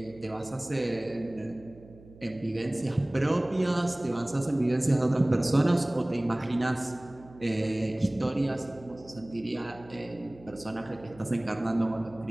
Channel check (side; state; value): right; noise; hum, 22 dB below the sound